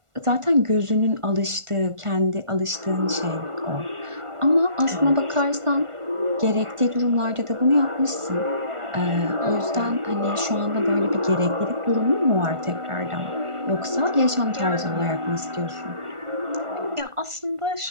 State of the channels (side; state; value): left; late; 1.4 ms